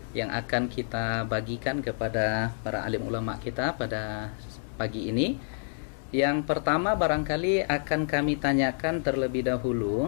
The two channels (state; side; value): silent; right; digital silence